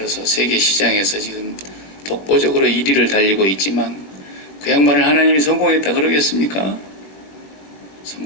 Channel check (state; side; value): late; right; 21 ms